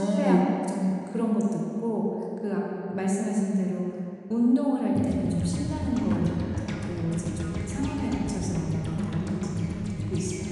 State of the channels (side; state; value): both; identical; correlation 1.00